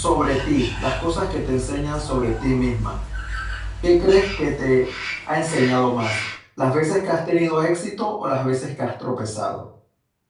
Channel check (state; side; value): identical; both; correlation 1.00